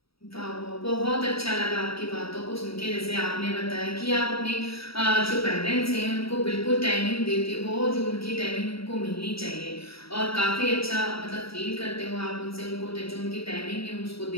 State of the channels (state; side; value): late; right; 0.76 ms